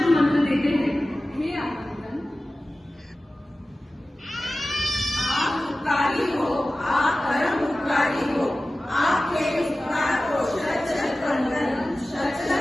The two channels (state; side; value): normal; both; correlation 0.96